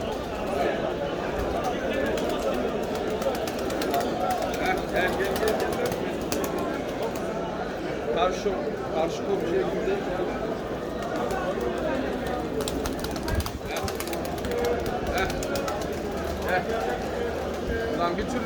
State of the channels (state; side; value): identical; both; correlation 1.00